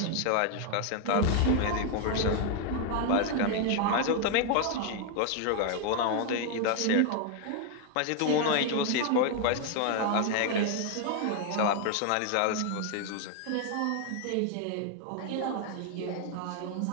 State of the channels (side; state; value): both; different; correlation 0.00